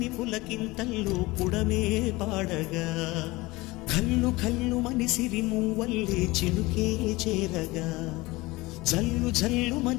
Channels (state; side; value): quieter; right; 21.4 dB